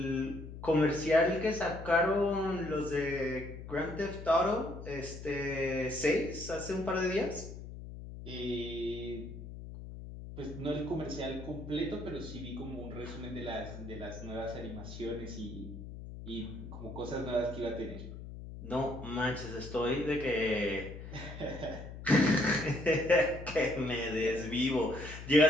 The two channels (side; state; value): left; noise; hum, 11 dB below the sound